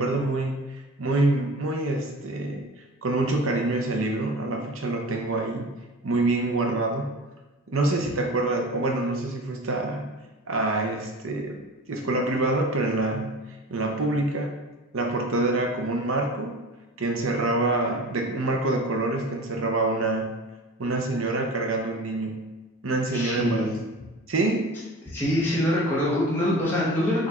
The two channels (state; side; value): normal; both; correlation 0.37